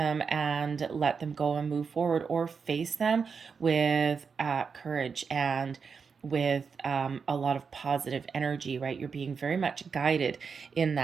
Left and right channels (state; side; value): quieter; left; 5.7 dB